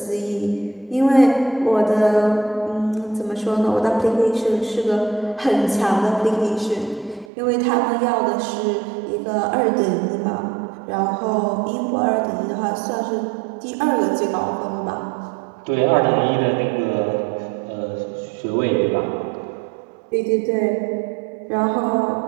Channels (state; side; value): drops out; left; at 7.3 s